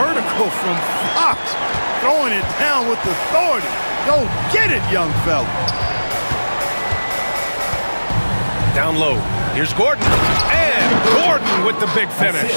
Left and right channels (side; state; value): both; inverted; correlation -1.00